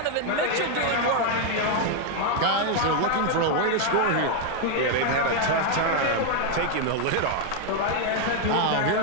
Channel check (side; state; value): both; different; correlation 0.00